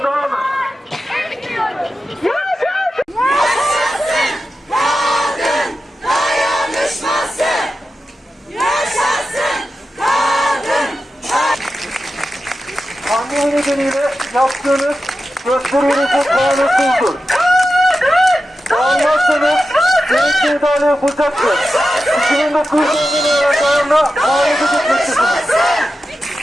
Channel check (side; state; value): both; normal; correlation 0.91